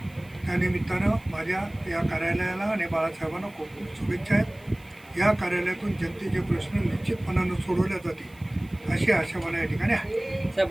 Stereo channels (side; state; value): right; noise; hiss, 28 dB below the sound